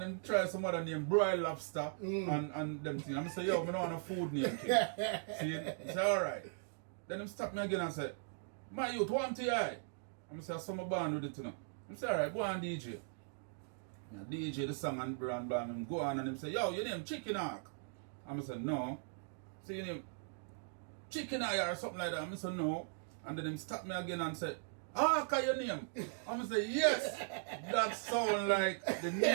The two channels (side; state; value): left; silent; digital silence